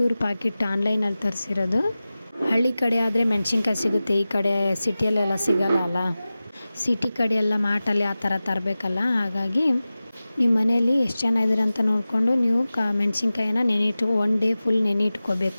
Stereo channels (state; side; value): inverted; both; correlation -0.96